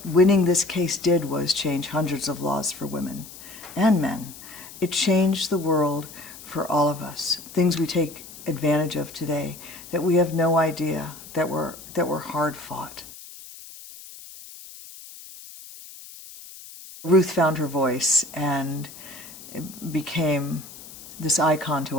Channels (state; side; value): noise; left; hiss, 16 dB below the sound